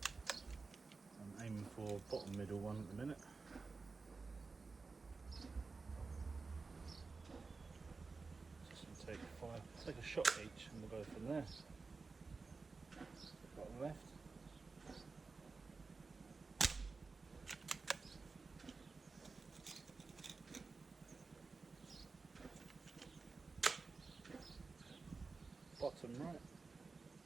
I'm aiming for bottom middle one at the minute. Just gonna take a shot each, and we'll go from there. Bottom left. Bottom right.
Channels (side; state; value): left; quieter; 4.2 dB